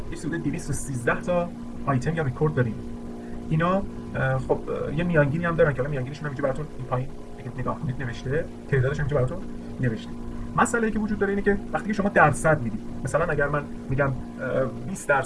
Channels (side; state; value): both; identical; correlation 1.00